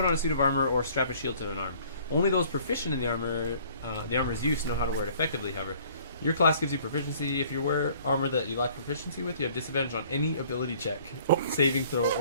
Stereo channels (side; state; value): both; inverted; correlation -0.55